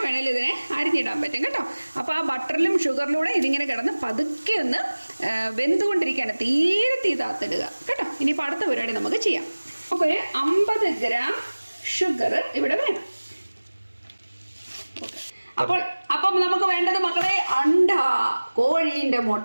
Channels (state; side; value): inverted; both; correlation -1.00